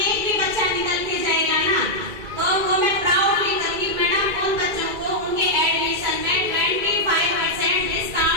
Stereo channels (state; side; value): late; left; 2.3 ms